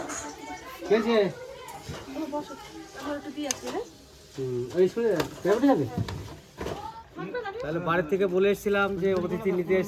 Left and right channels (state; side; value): identical; both; correlation 1.00